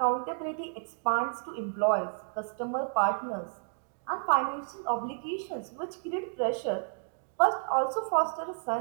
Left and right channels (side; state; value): left; silent; digital silence